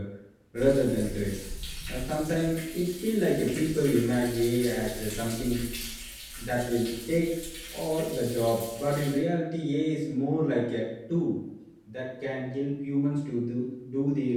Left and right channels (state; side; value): identical; both; correlation 1.00